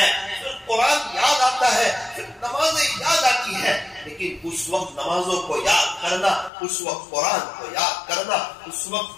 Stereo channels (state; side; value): drops out; right; at 6.5 s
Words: پھر قرآن یاد آتا ہے، پھر نمازیں یاد آتی ہے. لیکن اس وقت نمازوں کو یاد کرنا، اس وقت قرآن کو یاد کرنا، اس